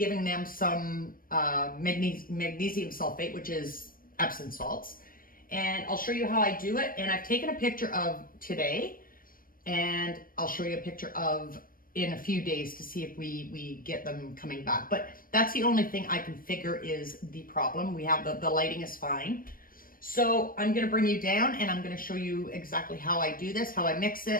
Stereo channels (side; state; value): right; late; 0.41 ms